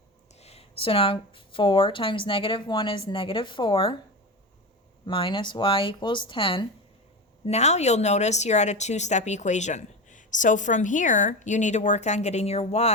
So now 4 times -1 is -4 minus y equals 10. Now you'll notice you're at a two-step equation. So from here, you need to work on getting your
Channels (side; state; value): both; normal; correlation 0.22